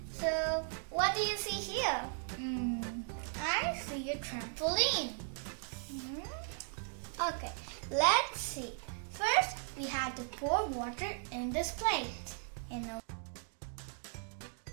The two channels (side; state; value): left; silent; 53 dB below the other